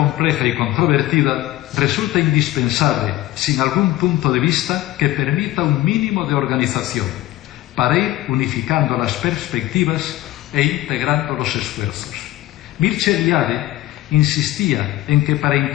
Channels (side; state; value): right; quieter; 15.6 dB